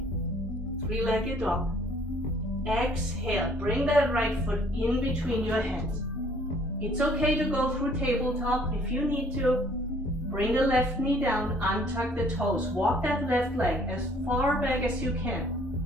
Three-legged dog. Exhale, bring that right foot in between your hands. It's okay to go through tabletop if you need to. Bring the left knee down, untuck the toes. Walk that left leg as far back as you can.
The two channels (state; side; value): normal; both; correlation 0.59